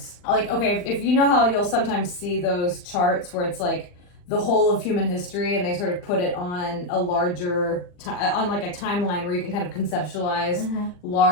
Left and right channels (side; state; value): right; late; 40 ms